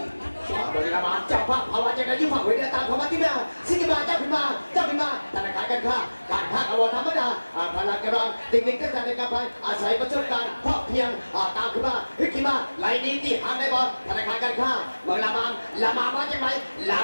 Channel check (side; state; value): both; inverted; correlation -1.00